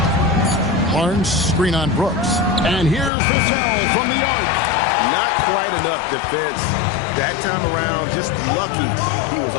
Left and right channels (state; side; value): drops out; right; at 3.1 s